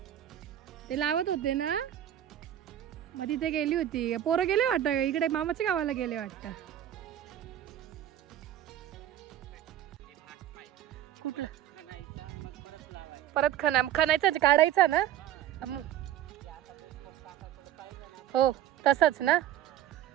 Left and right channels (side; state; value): left; quieter; 11.6 dB